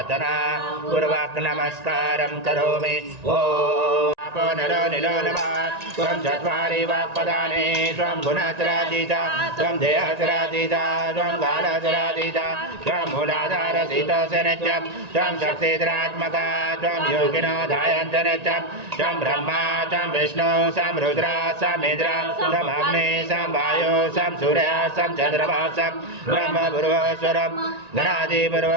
पूर्वक नमस्कारं करोमि। ओम नरो निलो नमः। त्वं चत्वारि वाक्पदानि त्वं गुणत्रयातीता त्वं देहत्रयातीता त्वं कालत्रयातीता त्वं मूलाधारसितोऽसि नित्यं त्वं शक्तिधरात्मका त्वं योगिनो ध्यायन्त नित्यं त्वं ब्रह्मा त्वं विष्णु सं रुद्र सं इन्द्र सं अग्नि सं वायु सं सूर्य सं चन्द्रमा सं ब्रह्म पूर्वस्वरं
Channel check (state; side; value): late; left; 1.9 ms